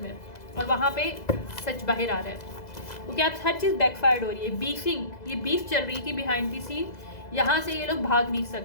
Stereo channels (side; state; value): right; late; 2.0 ms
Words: में, और वहाँ पे सच बाहर आ रहा है, क्योंकि आप हर चीज़ बैकफायर्ड हो रही है। बीफिंग, ये बीफ चल रही थी बिहाइंड दी सीन, यहाँ से ये लोग भाग नहीं